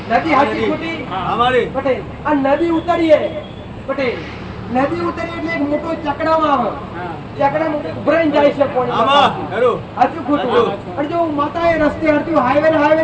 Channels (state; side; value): identical; both; correlation 1.00